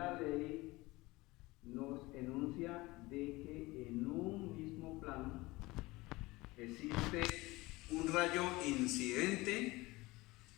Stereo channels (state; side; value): quieter; right; 21.2 dB